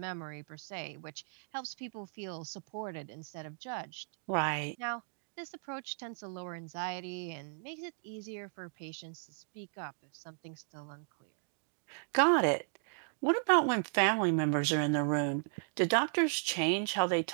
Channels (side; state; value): left; silent; digital silence